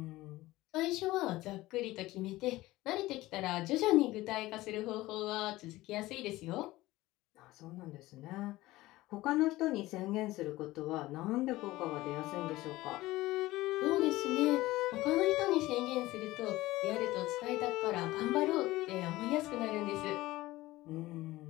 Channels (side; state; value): right; quieter; 18.0 dB